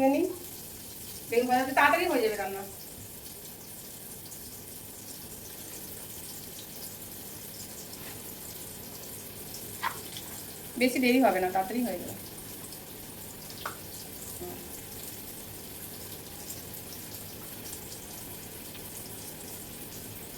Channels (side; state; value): both; identical; correlation 1.00